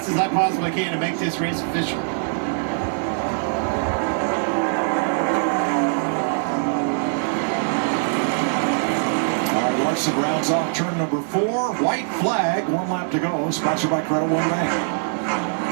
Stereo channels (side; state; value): left; silent; 64 dB below the other